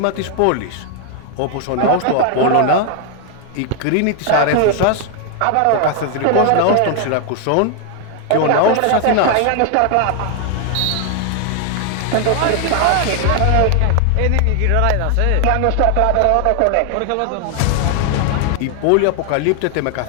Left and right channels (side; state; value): both; different; correlation 0.00